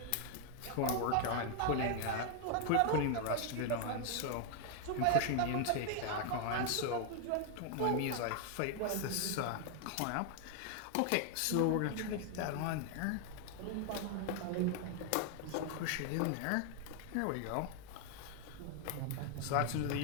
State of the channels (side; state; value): both; different; correlation 0.00